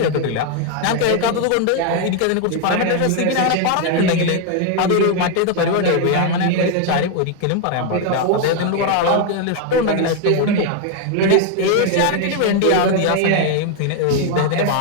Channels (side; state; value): both; different; correlation 0.01